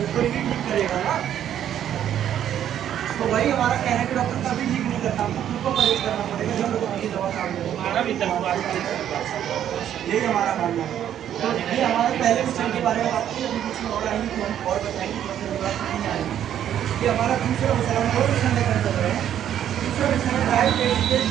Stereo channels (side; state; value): left; quieter; 10.4 dB